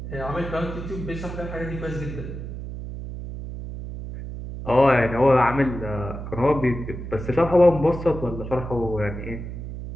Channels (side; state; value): right; noise; hum, 8 dB below the sound